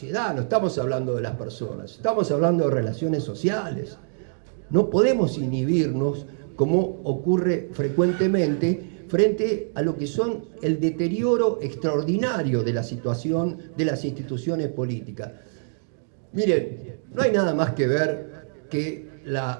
no estamos hablando de las personas, estamos hablando de relaciones sociales. No podemos inhibirnos, como ocurre frecuentemente, frente a lo que son el deterioro extraordinario de la situación de las instituciones políticas. Miren, no hay nada más que ver que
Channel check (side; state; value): left; silent; digital silence